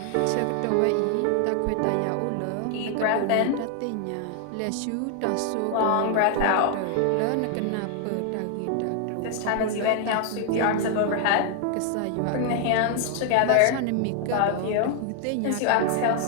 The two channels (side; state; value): both; different; correlation 0.00